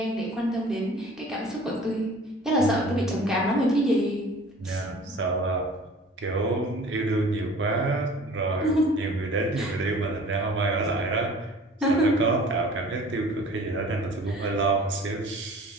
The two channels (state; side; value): normal; both; correlation 0.46